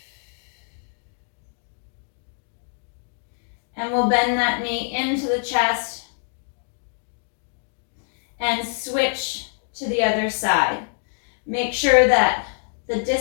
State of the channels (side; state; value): right; silent; digital silence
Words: And we'll bend that knee into the chest and switch to the other side. Make sure that the